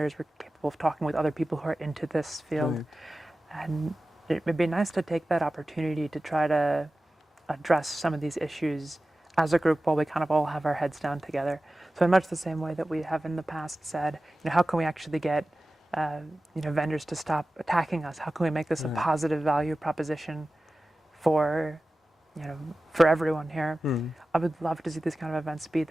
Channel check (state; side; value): normal; both; correlation 0.95